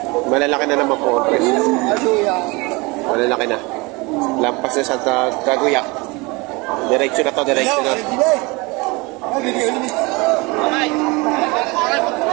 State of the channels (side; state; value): left; quieter; 25.6 dB